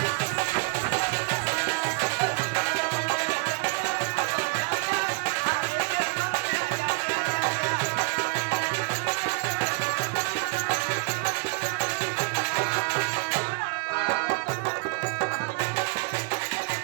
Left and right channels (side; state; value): left; quieter; 30.0 dB